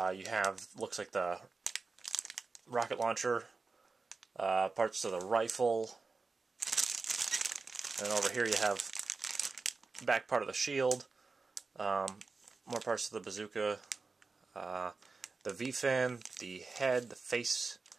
have, looks like the rocket launcher, parts of the rifle, and over here you have back part of the shield, more parts of the bazooka, the V-fin, the head, the face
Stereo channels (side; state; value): left; quieter; 4.2 dB